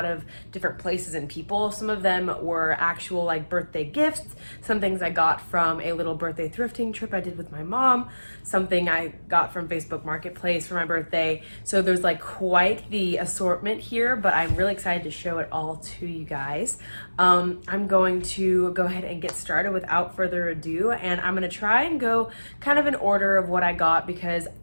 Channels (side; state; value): both; inverted; correlation -1.00